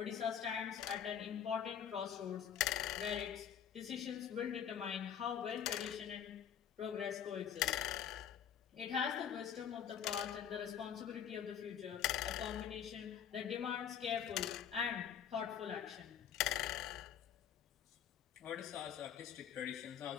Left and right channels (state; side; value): quieter; right; 8.8 dB